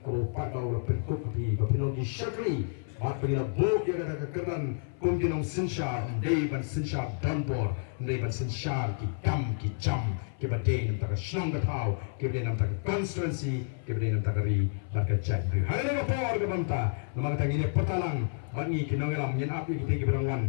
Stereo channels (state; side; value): silent; right; 56 dB below the other